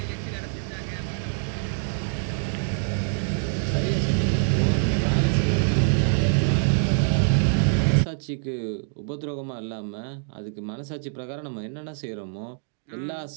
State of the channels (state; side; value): silent; left; digital silence